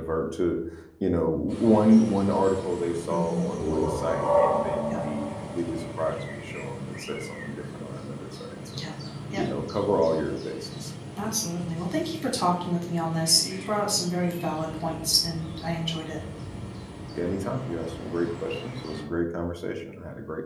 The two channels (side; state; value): both; identical; correlation 1.00